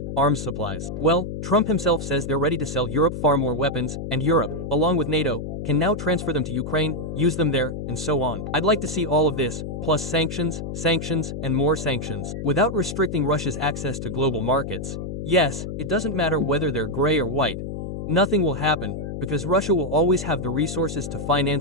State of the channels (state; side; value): noise; left; hum, 6 dB below the sound